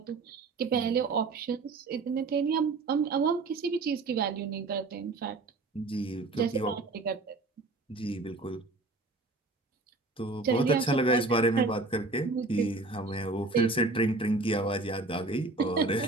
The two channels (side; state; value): left; quieter; 3.4 dB